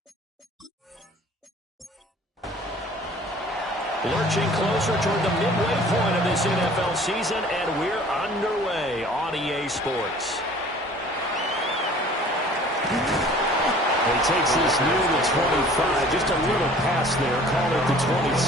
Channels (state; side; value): normal; both; correlation 0.49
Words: Lurching closer toward the midway point of this NFL season, and we're underway on EA Sports. He takes this near the 25, just a little pass there, call it the